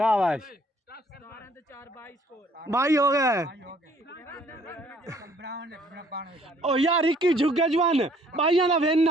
22 हो गए ओ यार इक्की झुक गया जवान भाइयों का विन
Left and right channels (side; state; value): both; normal; correlation 0.61